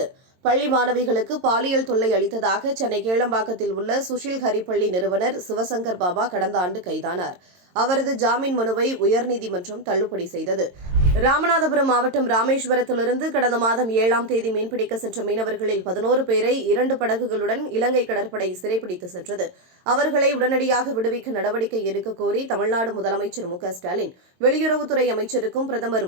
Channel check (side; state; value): left; late; 22 ms